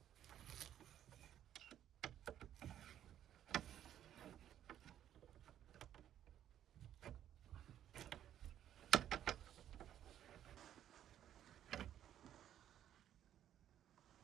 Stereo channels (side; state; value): left; quieter; 10.9 dB